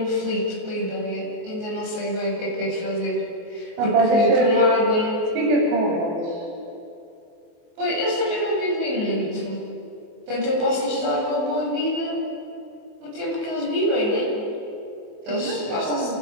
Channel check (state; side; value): late; left; 24 ms